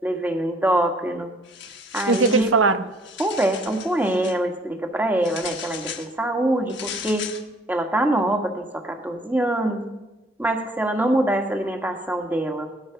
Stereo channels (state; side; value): normal; both; correlation 0.58